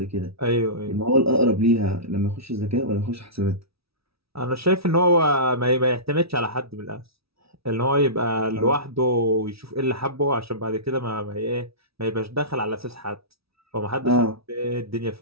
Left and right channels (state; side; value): late; left; 0.76 ms